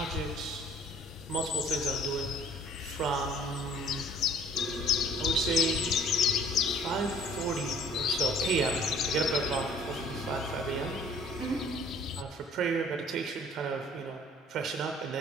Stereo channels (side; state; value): both; normal; correlation 0.54